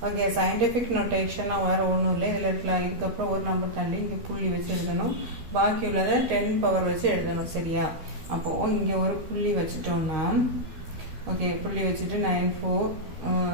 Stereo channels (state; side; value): late; left; 13 ms